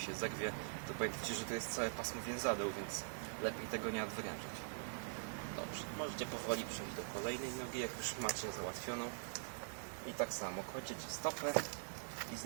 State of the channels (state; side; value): silent; left; digital silence